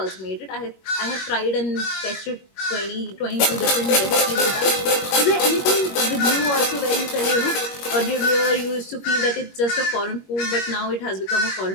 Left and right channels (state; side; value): late; right; 21 ms